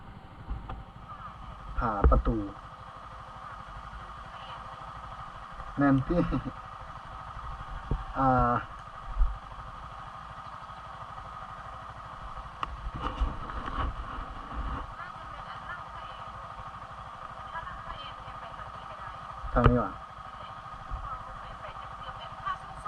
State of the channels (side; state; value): both; identical; correlation 1.00